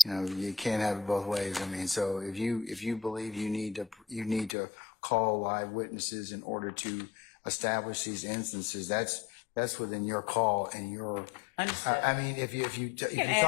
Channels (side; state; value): right; drops out; at 4.5 s